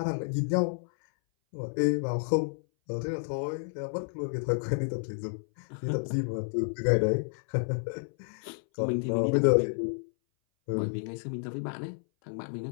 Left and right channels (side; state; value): right; silent; 58 dB below the other